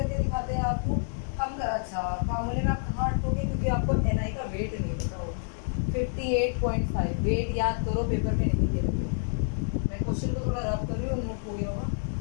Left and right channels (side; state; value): right; silent; 57 dB below the other